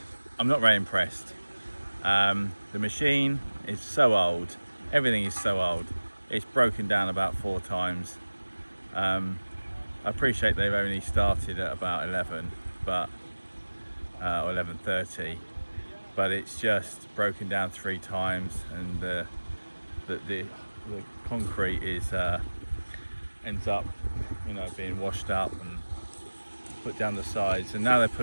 The machine is so old, everything is so old. It's broken down about 4 times. I I appreciate they've only started at about 11, but or 11:30, but it's just broken down 3 times, and the concrete is ends up, you know, being washed up and put down the sides, and now they're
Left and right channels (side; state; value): both; inverted; correlation -1.00